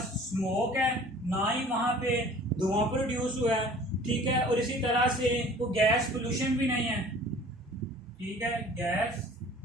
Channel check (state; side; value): normal; both; correlation 0.48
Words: स्मोक है, ना ही वहां पे धुआं प्रोड्यूस हुआ है, ठीक है, और इसी तरह से वो गैस पोल्यूशन भी नहीं है, ठीक है, गैस